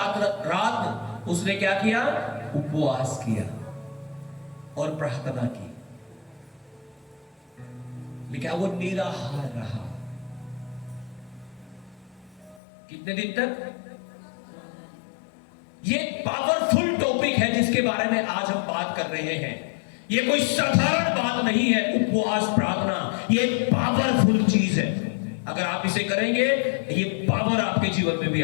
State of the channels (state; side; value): drops out; right; at 12.6 s